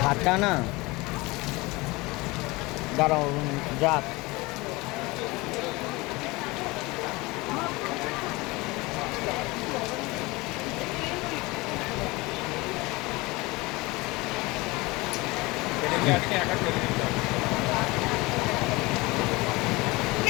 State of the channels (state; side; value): quieter; right; 23.0 dB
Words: ভাতটা না দাঁড়াও যাক